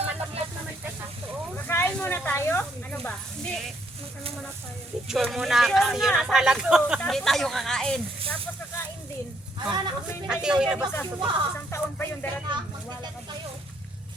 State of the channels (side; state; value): both; normal; correlation 0.71